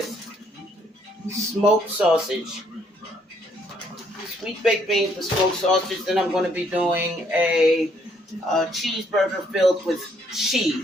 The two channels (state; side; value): normal; both; correlation 0.68